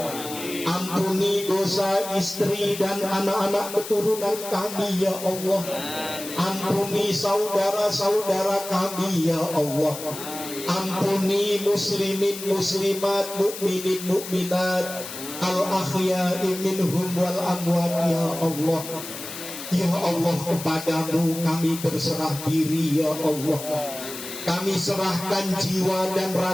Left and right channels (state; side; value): noise; left; hiss, 10 dB below the sound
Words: Ampuni dosa istri dan anak-anak keturunan kami ya Allah. Ampuni saudara-saudara kami ya Allah. Ampuni muslimin muslimat, mukminin mukminat, al-akhya'i minhum wal amwat ya Allah. Ya Allah, kepadamu kami berserah diri ya Allah. Kami serahkan jiwa dan